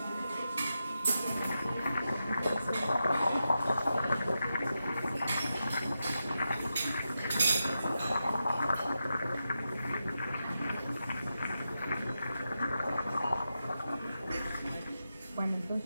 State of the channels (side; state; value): both; inverted; correlation -0.89